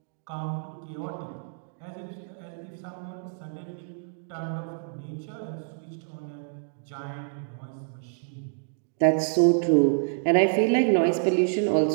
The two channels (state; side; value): silent; left; digital silence